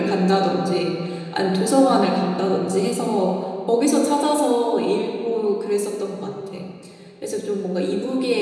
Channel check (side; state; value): both; identical; correlation 1.00